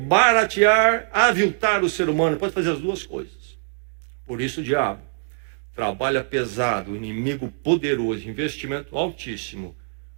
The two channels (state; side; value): silent; left; digital silence